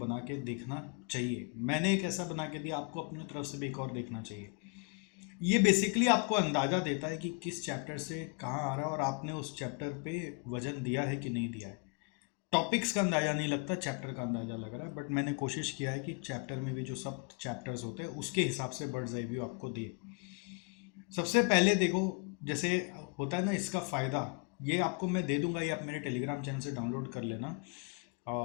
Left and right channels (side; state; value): right; quieter; 33.1 dB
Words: के देखना चाहिए। मैंने एक ऐसा बना के दिया, आपको अपनी तरफ से भी एक और देखना चाहिए। ये बेसिकली आपको अंदाजा देता है कि किस चैप्टर से कहाँ आ रहा है और आपने उस चैप्टर पे वजन दिया है कि नहीं दिया है। टॉपिक्स का अंदाजा नहीं लगता, चैप्टर का अंदाजा लग रहा है, बट मैंने कोशिश किया है कि चैप्टर में भी जो सब चैप्टर्स होते हैं उसके हिसाब से बर्ड्स आई व्यू आपको दे। सबसे पहले देखो, जैसे होता है ना, इसका फ़ायदा ये आपको मैं दे दूंगा, ये आप मेरे टेलीग्राम चैनल से डाउनलोड कर लेना